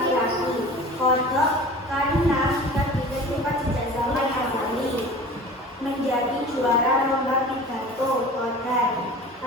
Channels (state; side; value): normal; both; correlation 0.39